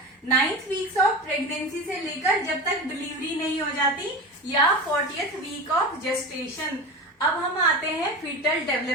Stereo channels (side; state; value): both; normal; correlation 0.27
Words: 9th weeks of pregnancy से लेकर जब तक डिलीवरी नहीं हो जाती या 40th वीक ऑफ जेस्टेशन। अब हम आते हैं फीटल